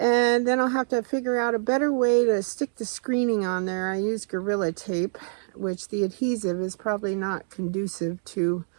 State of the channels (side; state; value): left; silent; 61 dB below the other